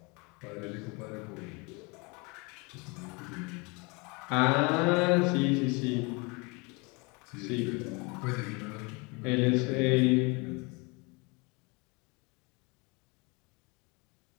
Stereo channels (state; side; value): quieter; right; 28.9 dB